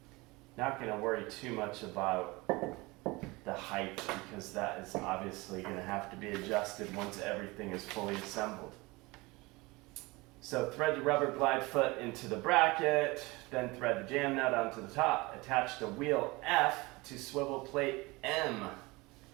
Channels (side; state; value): left; quieter; 23.3 dB